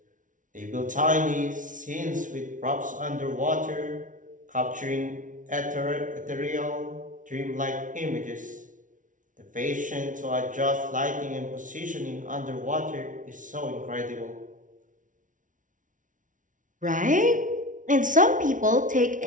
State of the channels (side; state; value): left; late; 0.38 ms